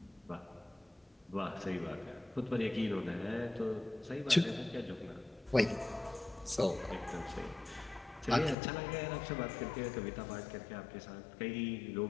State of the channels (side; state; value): right; drops out; at 8.6 s